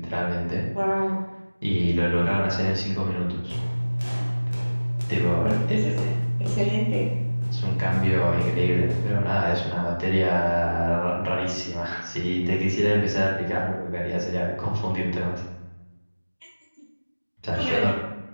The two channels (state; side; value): inverted; both; correlation -1.00